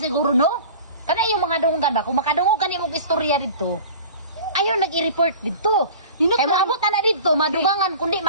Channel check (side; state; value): both; inverted; correlation -0.40